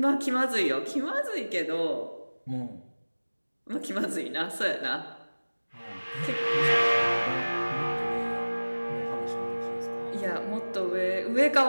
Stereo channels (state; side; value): inverted; both; correlation -1.00